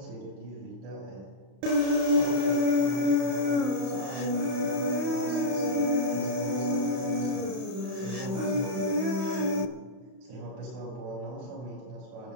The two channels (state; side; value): late; left; 32 ms